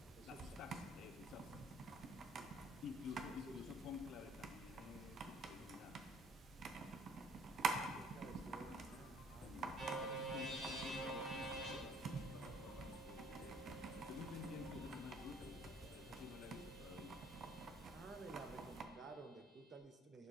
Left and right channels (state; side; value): normal; both; correlation 0.60